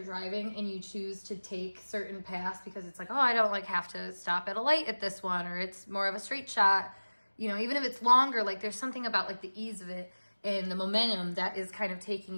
driving and you choose to take certain paths because it's I don't have to stop at a light at this one, or it's more of a straight shot. Even if it's longer, there's something about the ease of it and the momentum that is kind of taking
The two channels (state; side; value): inverted; both; correlation -1.00